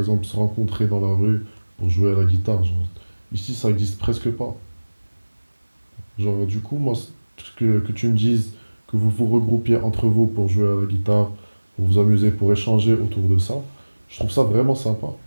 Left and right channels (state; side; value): inverted; both; correlation -1.00